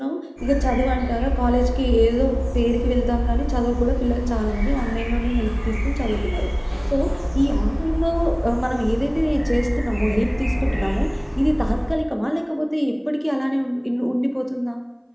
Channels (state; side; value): identical; both; correlation 1.00